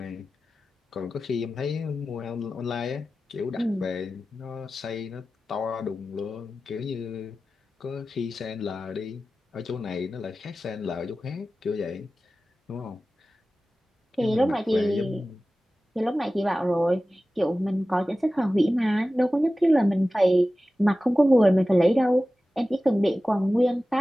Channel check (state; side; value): normal; both; correlation 0.95